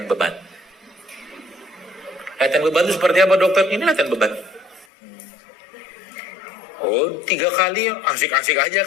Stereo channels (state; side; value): drops out; right; at 4.9 s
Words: beban. Latihan beban itu seperti apa dokter? Ini latihan beban. Oh 3 kali asik-asik aja